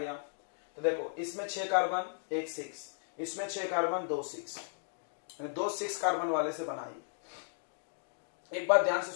तो देखो इसमें 6 कार्बन 1 6, इसमें 6 कार्बन 2 6, 2 6 कार्बन वाले से बनाई। एक बात ध्यान से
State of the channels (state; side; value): silent; right; digital silence